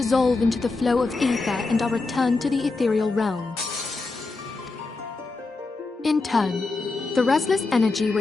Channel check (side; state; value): right; quieter; 3.7 dB